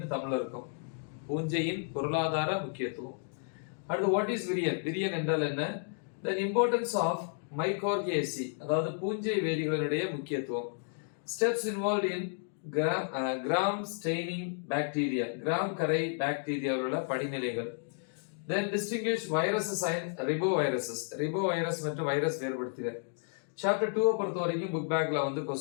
தமிழ்ல இருக்கும். பூஞ்சையின் பொருளாதார முக்கியத்துவம். அடுத்து வாட் இஸ் விரியன், விரியன் என்றால் என்ன? தென் இம்பார்ட்டன்ஸ் ஆஃப் மைகார்கியேசி, அதாவது பூஞ்சை வேதிகளினுடைய முக்கியத்துவம். Steps involve in gram staining bacteria, gram கரை பாக்டீரியாவுள்ள படிநிலைகள். Then distinguish viruses and riboviruses, ribovirus மற்றும் வைரஸ் வேறுபடுத்துக. சாப்டர் 2 பொறுத்த வரைக்கும் புக் பேக்ல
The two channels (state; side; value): silent; right; 56 dB below the other